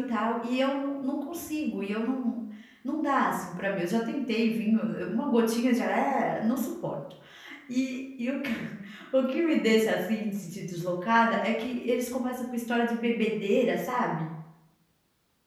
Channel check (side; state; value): both; identical; correlation 1.00